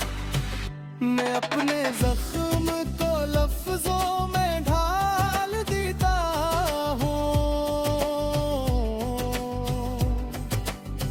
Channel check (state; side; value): identical; both; correlation 1.00